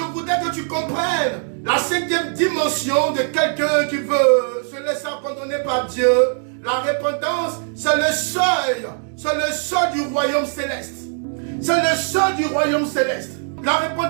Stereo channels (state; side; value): silent; left; 56 dB below the other